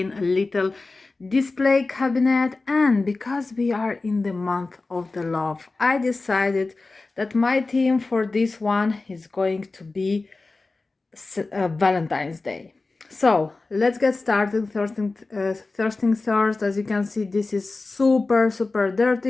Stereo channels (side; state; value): right; quieter; 3.5 dB